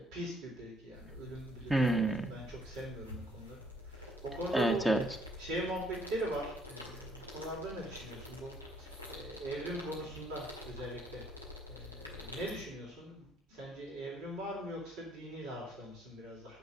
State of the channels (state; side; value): normal; both; correlation 0.66